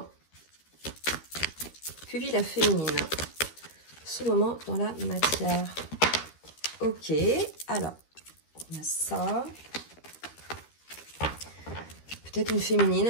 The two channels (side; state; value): right; late; 13 ms